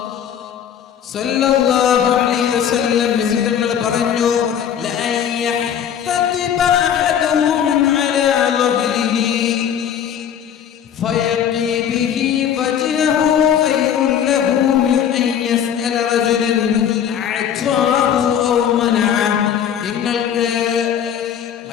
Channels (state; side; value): quieter; right; 9.0 dB